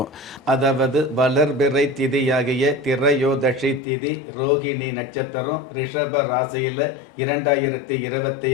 அதாவது வளர்பிறை திதியாகிய திரையோதஷி திதி ரோகிணி நட்சத்திரம் ரிஷப ராசியில்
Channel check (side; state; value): right; drops out; at 3.8 s